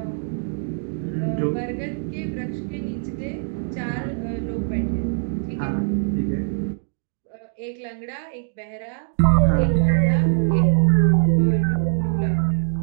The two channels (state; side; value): silent; left; digital silence